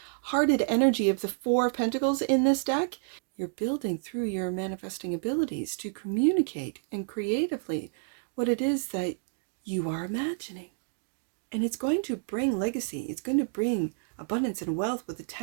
energy of the Four of Pentacles in this deck, you're building through your manifesting abilities to communicate and creatively what it is that you are imagining. And it's going to bring legacy. It's going to bring abundance and wealth with the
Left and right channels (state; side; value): silent; left; digital silence